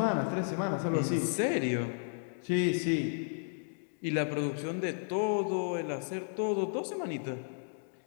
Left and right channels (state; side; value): silent; right; digital silence